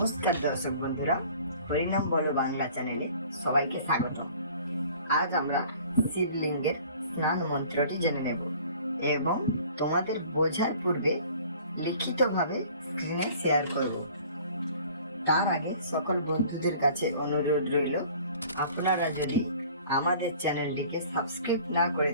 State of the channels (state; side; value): inverted; both; correlation -0.50